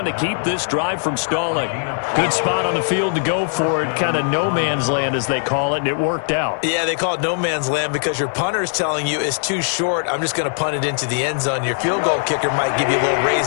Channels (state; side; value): silent; right; 62 dB below the other